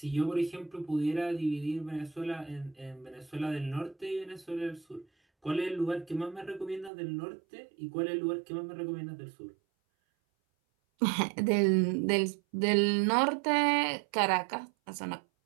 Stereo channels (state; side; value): drops out; left; at 6.9 s